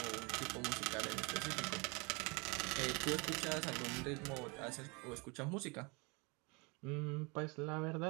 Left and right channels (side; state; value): left; quieter; 29.0 dB